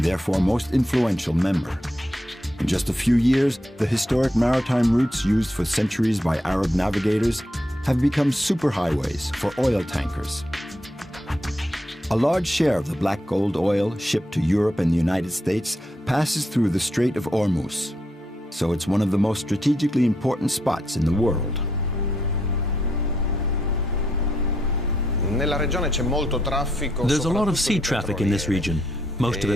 therefore most influential member. In just a few years, the historic maritime routes used for centuries by Arab navigators have become superhighways for oil tankers. A large share of the black gold oil shipped to Europe and the United States passes through the Strait of Hormuz. so it's one of the most strategically important spots in the world. There's a lot of sea traffic in this region, most of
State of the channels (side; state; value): both; normal; correlation 0.78